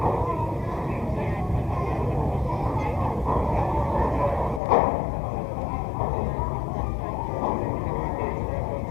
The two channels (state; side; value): drops out; right; at 4.6 s